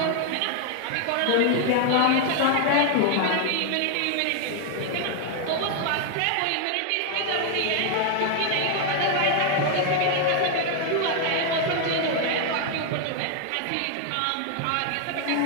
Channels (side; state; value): both; different; correlation 0.00